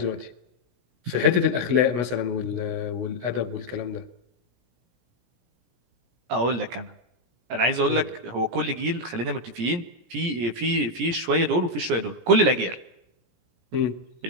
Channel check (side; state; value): left; late; 17 ms